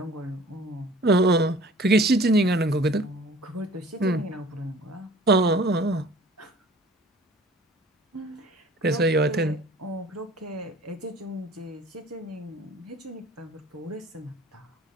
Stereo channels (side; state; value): both; normal; correlation 0.49